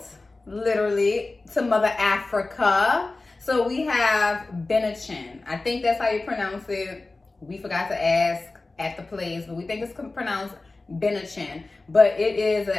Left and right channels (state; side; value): quieter; right; 3.3 dB